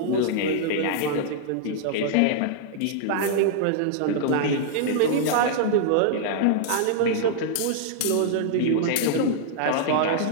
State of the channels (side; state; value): both; different; correlation -0.01